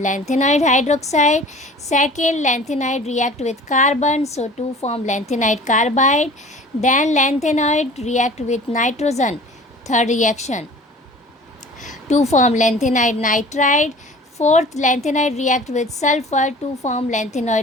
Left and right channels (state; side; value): normal; both; correlation 0.44